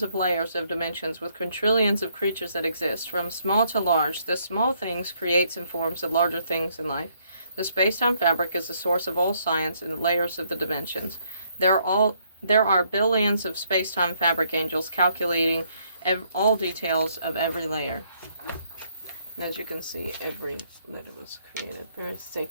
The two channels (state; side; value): inverted; both; correlation -0.70